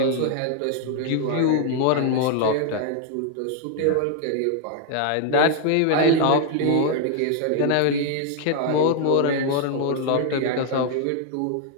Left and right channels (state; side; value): different; both; correlation 0.00